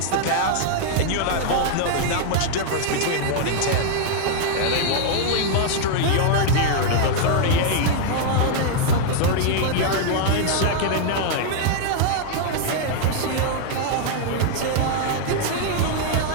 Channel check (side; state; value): both; different; correlation -0.01